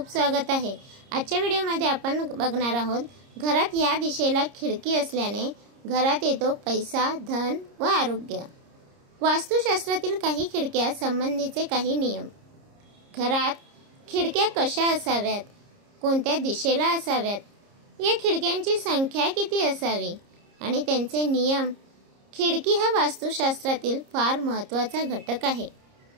स्वागत आहे। आजच्या व्हिडिओमध्ये आपण बघणार आहोत, घरात या दिशेला खिडकी असल्याने घरात येतो पैसा, धन व आरोग्य। वास्तुशास्त्रातील काही खिडक्या संबंधीचे काही नियम। घरात खिडक्या कशा असाव्यात, कोणत्या दिशेला असाव्यात, या खिडक्यांची संख्या किती असावी आणि त्यांचे नियम। खिडकी हा वास्तुशास्त्रातील फार महत्त्वाचा घटक आहे।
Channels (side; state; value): left; late; 30 ms